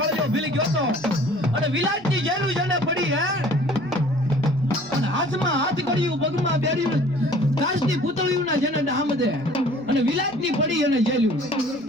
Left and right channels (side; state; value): right; noise; rumble, 29 dB below the sound